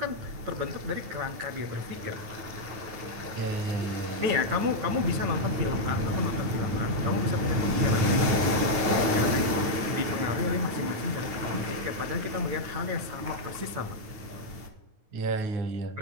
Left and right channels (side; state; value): left; late; 9.4 ms